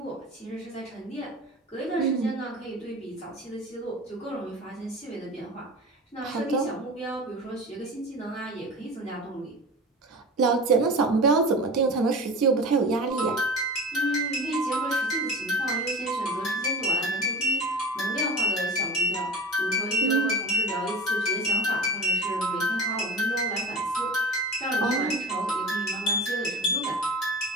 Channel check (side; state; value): both; normal; correlation 0.32